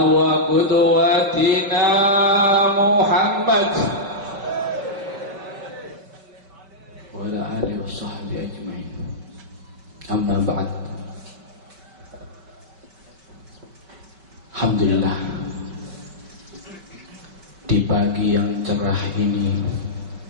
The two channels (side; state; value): left; late; 5.1 ms